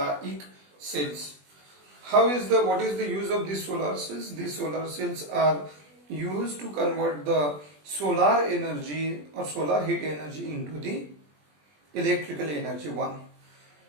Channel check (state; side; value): late; left; 20 ms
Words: cells. What is the use of these solar cells? These solar cells are used to convert the solar energy or solar heat energy into the electrical energy. One.